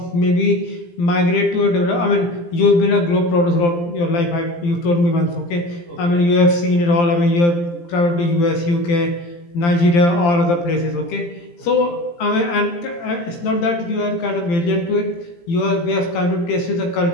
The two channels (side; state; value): right; late; 17 ms